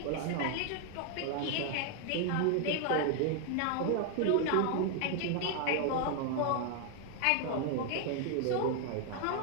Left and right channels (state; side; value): different; both; correlation 0.00